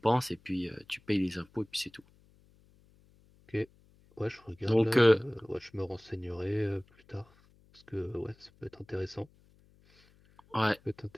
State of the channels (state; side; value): noise; left; hum, 30 dB below the sound